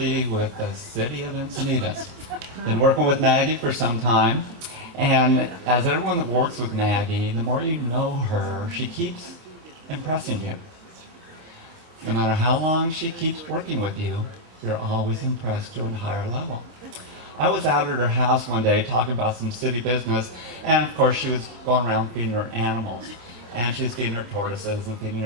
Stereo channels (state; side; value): late; left; 26 ms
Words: with the City of Encinitas. Been working with Maggie for some time, and as everyone that works with Maggie, the more you know her, she keeps impressing you. No matter how long she keeps working with you, you're always impressed to a higher level. I was out at her house one day talking about some city business, and of course she was going around feeding her animals. And she was feeding her tortoises and feeding